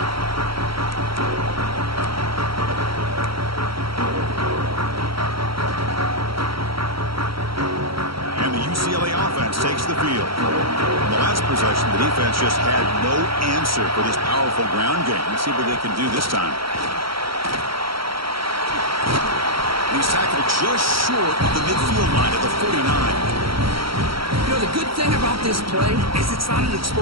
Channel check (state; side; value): late; left; 0.75 ms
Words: UCLA offense takes the field. In the last possession, the defense just had no answer for this powerful ground game. Let's see what they can do this time. He's tackled just short of the midfield line at the 49. You know, the good thing about this play is it's not an